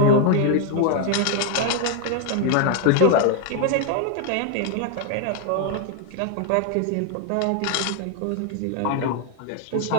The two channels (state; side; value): different; both; correlation 0.01